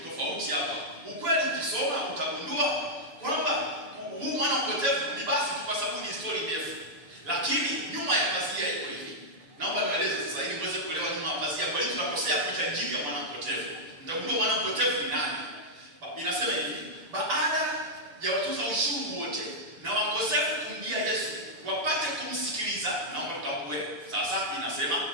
tofauti hapa. Ukweli ukisoma utagundua kwamba huu mwana mpotevu ni basi kwa sababu ni story ndefu. Lakini nyuma ya pazia iko hivi. Naomba niwaeleze sasa ili muweze kuelewa nyuma ya pazia kwa nini tunakosea kuita Injili ya mwana mpotevu. Mtagundua mwana mpotevu ni nani? Inasema hivi, baada ya watoza ushuru wote na wakosefu kumjia Yesu wapate kumsikiliza, naomba tutambue sasa inasema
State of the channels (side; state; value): left; late; 6.6 ms